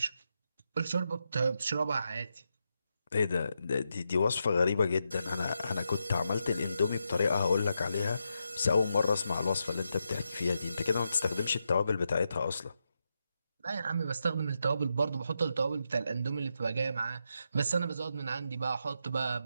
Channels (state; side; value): inverted; both; correlation -0.85